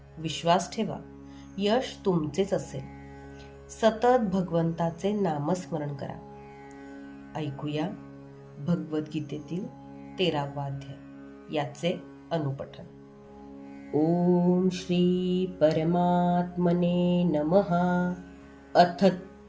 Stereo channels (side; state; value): both; identical; correlation 1.00